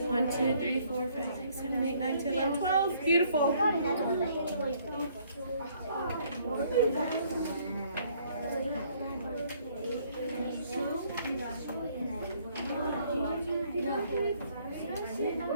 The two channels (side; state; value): both; inverted; correlation -0.63